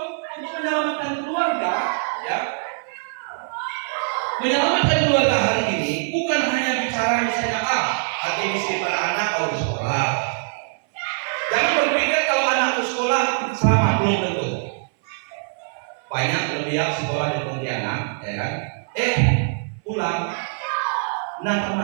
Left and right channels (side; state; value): left; silent; 59 dB below the other